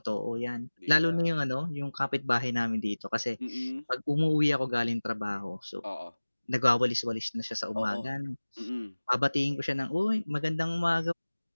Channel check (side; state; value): both; inverted; correlation -1.00